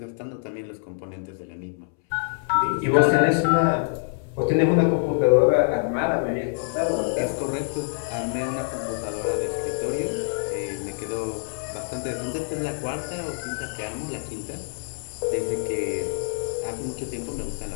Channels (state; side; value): silent; right; 61 dB below the other